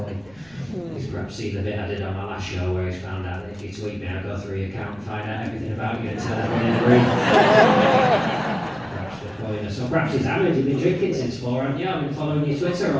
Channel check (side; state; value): right; noise; rumble, 29 dB below the sound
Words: He's perhaps seen the bit I did on my last show where he's found out that if you tweet me, I'll go through your account and find out everything about you and tell everyone in the room. Perhaps we're calling us. So perhaps he's hammered. You've been drinking since 4, haven't you? I've been following your Twitter